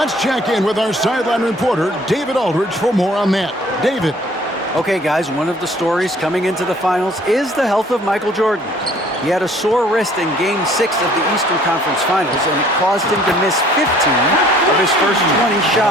check in with our sideline reporter, David Aldridge, for more on that. David. Okay, guys, one of the stories coming into the finals is the health of Michael Jordan. He had a sore wrist in Game 6 of the Eastern Conference Finals, and it caused him to miss 15 of his first 20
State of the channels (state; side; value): normal; both; correlation 0.56